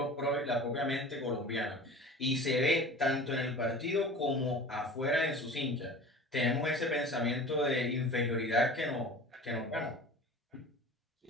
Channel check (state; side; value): normal; both; correlation 0.39